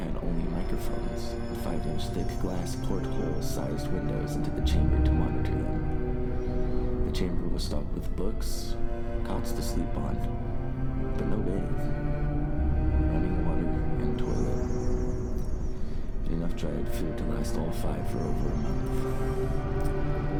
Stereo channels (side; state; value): both; identical; correlation 1.00